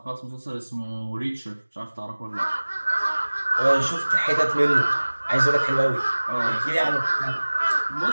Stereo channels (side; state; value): both; inverted; correlation -1.00